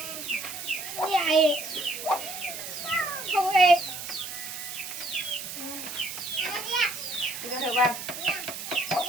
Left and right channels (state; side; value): noise; right; hiss, 8 dB below the sound